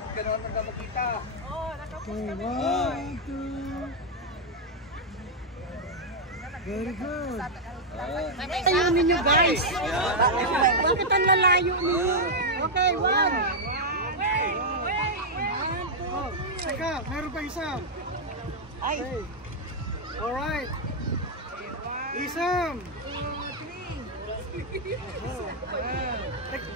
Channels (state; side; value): normal; both; correlation -0.03